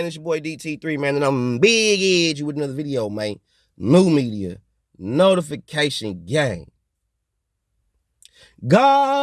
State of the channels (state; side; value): identical; both; correlation 1.00